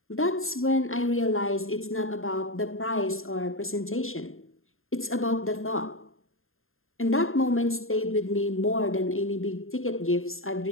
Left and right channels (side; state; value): right; late; 0.61 ms